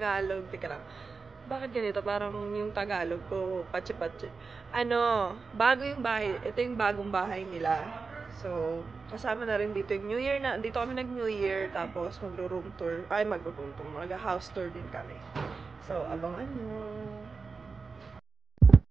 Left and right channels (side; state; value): left; quieter; 4.5 dB